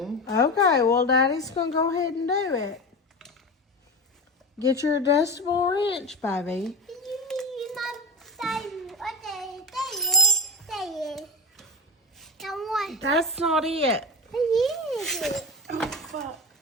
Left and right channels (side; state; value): both; normal; correlation 0.25